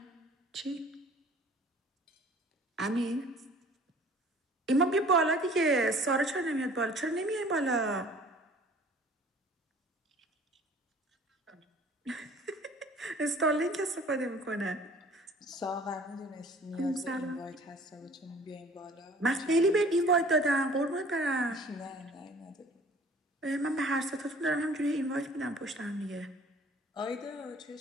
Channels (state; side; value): normal; both; correlation 0.50